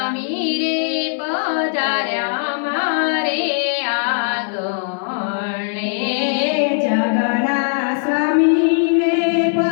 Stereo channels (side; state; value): right; silent; 57 dB below the other